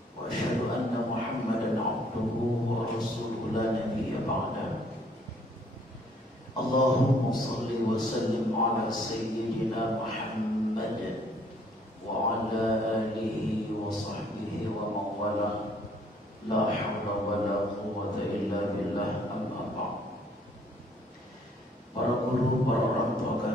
وأشهد أن محمدا عبده ورسوله لا نبي بعده. اللهم صل وسلم على سيدنا محمد وعلى آله وصحبه ومن والاه لا حول ولا قوة إلا بالله. أما بعد. Para guru, para orang tua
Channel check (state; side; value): normal; both; correlation 0.63